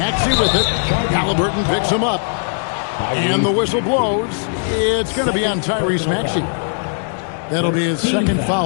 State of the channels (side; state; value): right; silent; digital silence